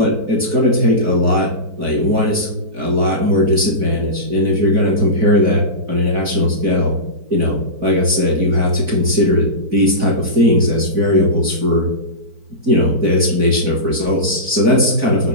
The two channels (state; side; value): late; left; 4.5 ms